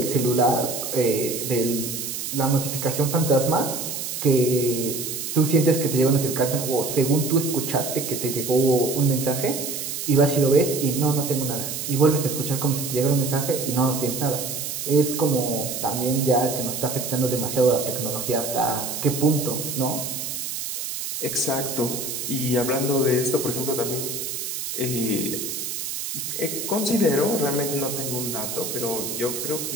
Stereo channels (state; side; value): noise; right; hiss, 5 dB below the sound